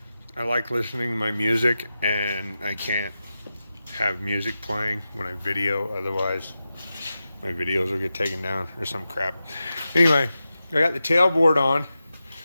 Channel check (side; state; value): both; inverted; correlation -0.91